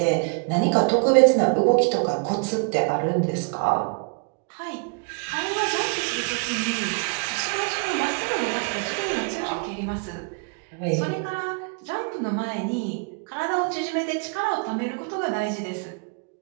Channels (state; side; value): quieter; left; 36.2 dB